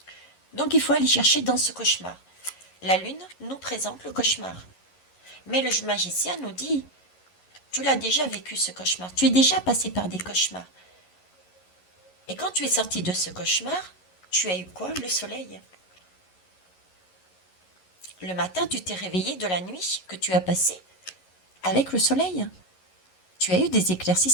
Donc il faut aller chercher dans ce cauchemar. La lune nous présente le cauchemar. Mais le magicien nous dit, tu l'as déjà vécu ce cauchemar, tu es déjà passé par des cauchemars. Et quand tu es sorti de ce cauchemar, tu as eu quoi? Le soleil. Le matin, tu t'es réveillé de la nuit que tu as passée avec le soleil. Tu as eu des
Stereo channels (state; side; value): late; right; 11 ms